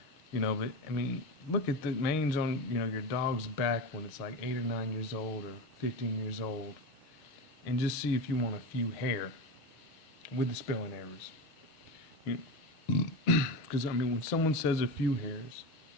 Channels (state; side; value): late; right; 6.4 ms